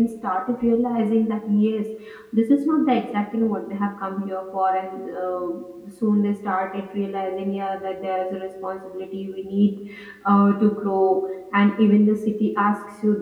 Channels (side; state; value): both; identical; correlation 1.00